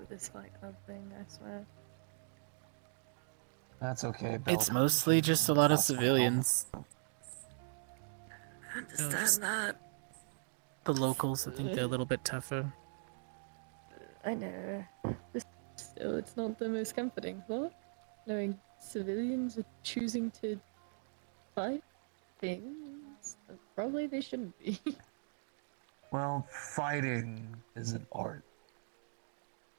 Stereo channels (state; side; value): silent; left; digital silence